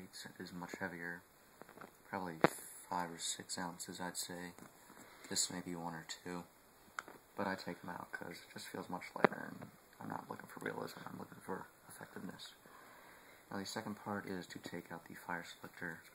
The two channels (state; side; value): noise; right; rumble, 27 dB below the sound